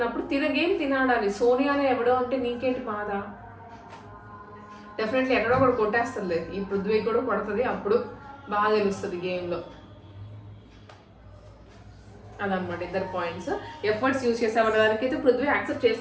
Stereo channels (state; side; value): identical; both; correlation 1.00